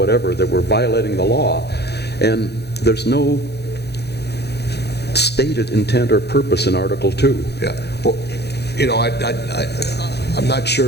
that we're violating the law. And there's no stated intent or purpose in Article 2. Yeah. Well, I'm not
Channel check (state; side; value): late; right; 0.48 ms